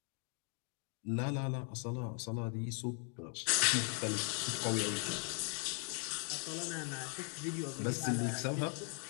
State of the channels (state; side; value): quieter; right; 38.8 dB